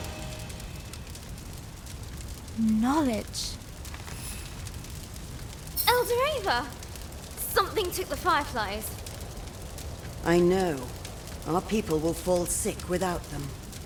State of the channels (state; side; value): identical; both; correlation 1.00